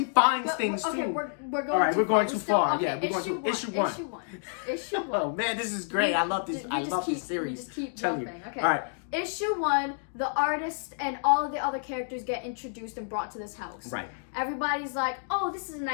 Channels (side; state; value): right; silent; digital silence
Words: finds things too. We're going all right, we're going too far. Okay, yeah, we're going to issue 1. Issue 1. Oh man, this is great. I love this. I love this series. Just keep Tell you. Okay. All right. Issue 1, the artist and all of the other characters get introduced and brought to this house. Right. Everybody's like, "Oh, this is a